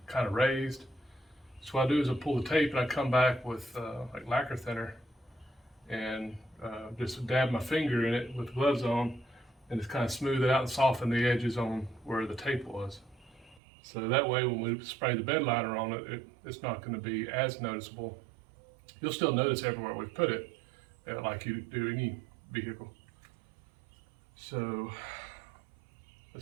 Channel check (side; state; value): left; drops out; at 13.6 s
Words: kind of raised. So what I do is I pull the tape and I come back with like lacquer thinner and just dab my finger in it with gloves on, and just kind of smooth it out and soften the edges on where the tape was. So that way when we spray the bed liner on it, it's not going to be as noticeable. You'll still notice everywhere we've put it, like you do any vehicle. So